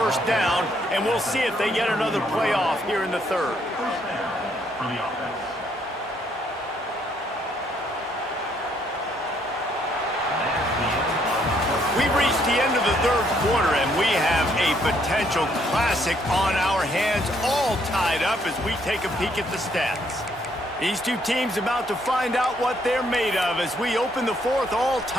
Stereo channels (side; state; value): both; normal; correlation 0.69